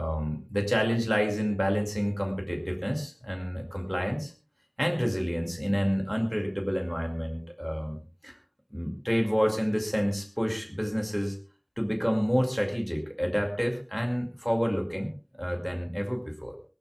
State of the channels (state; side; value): identical; both; correlation 1.00